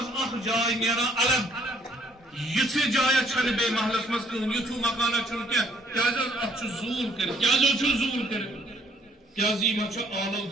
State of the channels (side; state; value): both; normal; correlation 0.64